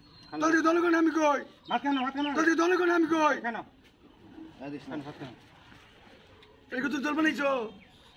ভাত কেন দলে কোন আমি কই কেন এই তো জল বানাইছো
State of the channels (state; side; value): identical; both; correlation 1.00